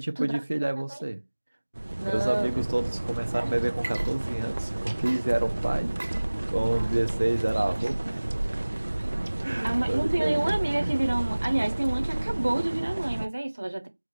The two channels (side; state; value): both; inverted; correlation -1.00